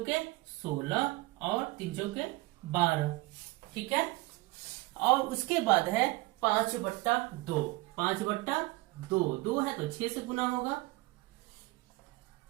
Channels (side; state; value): left; quieter; 21.3 dB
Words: 16 और 3 चौके 12, ठीक है। और उसके बाद है 5/2, 5/2, 2 है तो 6 से गुना होगा,